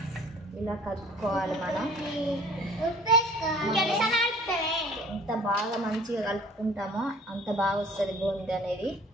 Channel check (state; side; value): normal; both; correlation 0.51